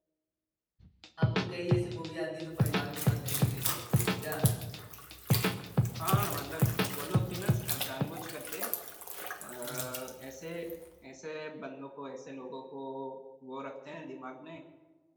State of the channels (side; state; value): both; identical; correlation 1.00